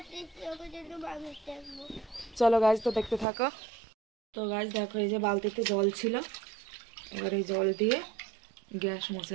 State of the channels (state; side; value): drops out; left; at 3.2 s